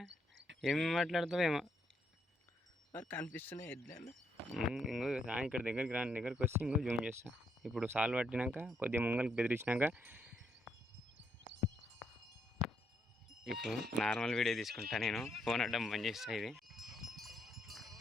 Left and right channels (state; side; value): normal; both; correlation 0.76